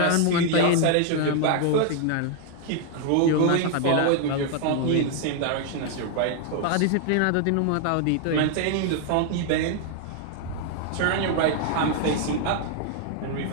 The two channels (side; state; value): both; different; correlation 0.00